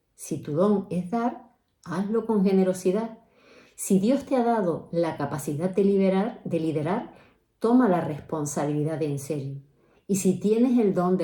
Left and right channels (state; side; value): identical; both; correlation 1.00